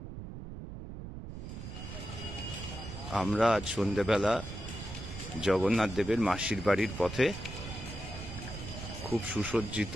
আমরা আজ সন্ধ্যেবেলা জগন্নাথ দেবের মাসির বাড়ির পথে, খুব সুসজ্জিত,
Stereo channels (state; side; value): noise; right; rumble, 9 dB below the sound